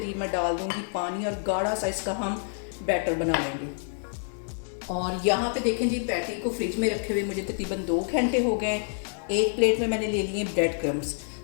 मैं डाल दूंगी पानी, और गाढ़ा सा इसका हम बैटर बना लेंगे। और यहाँ पे देखें जी, पैटी को फ्रिज में रखे हुए मुझे तकरीबन 2 घंटे हो गए। एक प्लेट में मैंने ले लिए ब्रेड क्रम्स।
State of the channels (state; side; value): silent; right; digital silence